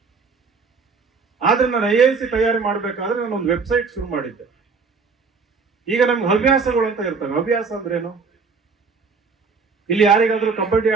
ಆದ್ರೆ ನಾನು IAS ತಯಾರಿ ಮಾಡ್ಬೇಕಾದ್ರೆ ನಾನು ಒಂದು ವೆಬ್ಸೈಟ್ ಶುರು ಮಾಡಿದ್ದೆ. ಈಗ ನಮ್ಗೆ ಹವ್ಯಾಸಗಳು ಅಂತ ಇರ್ತವೆ. ಹವ್ಯಾಸ ಅಂದ್ರೇನು? ಇಲ್ಲಿ ಯಾರಿಗಾದ್ರೂ ಕಬಡ್ಡಿ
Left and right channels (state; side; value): quieter; left; 4.8 dB